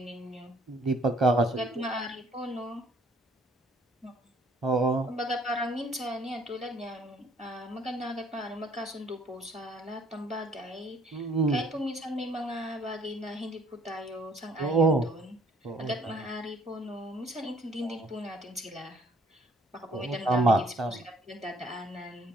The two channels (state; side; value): normal; both; correlation 0.61